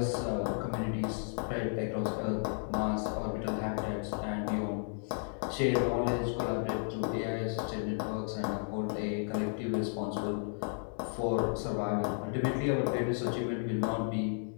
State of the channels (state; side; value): silent; right; 55 dB below the other